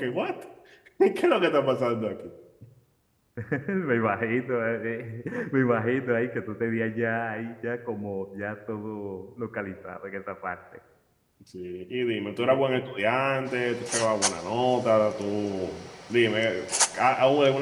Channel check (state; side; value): identical; both; correlation 1.00